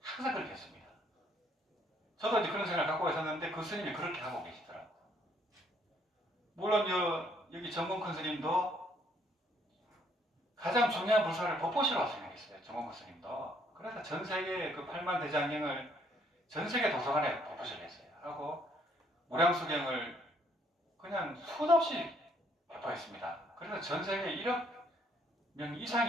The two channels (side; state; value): both; normal; correlation 0.66